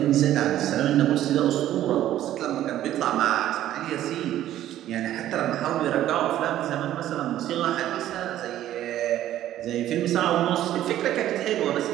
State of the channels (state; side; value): quieter; left; 12.7 dB